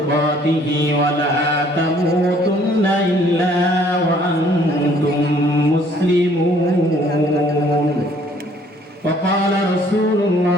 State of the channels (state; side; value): normal; both; correlation 0.60